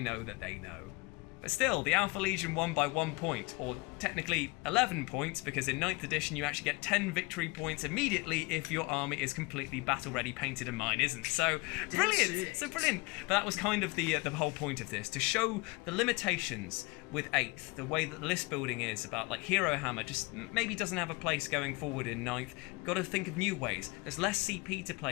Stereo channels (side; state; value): right; quieter; 25.1 dB